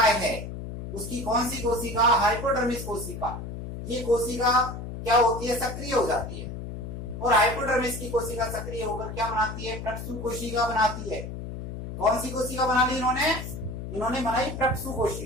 है उसकी कौन सी कोशिका? हाइपोडर्मिस कोशिका। ये कोशिका क्या होती है? सक्रिय हो जाती है। और हाइपोडर्मिस की कोशिका सक्रिय होकर क्या बनाती है? प्रक्षु कोशिका बनाती है। कौन सी कोशिका बना ली इन्होंने बनाई प्रक्षु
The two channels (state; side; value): noise; left; hum, 8 dB below the sound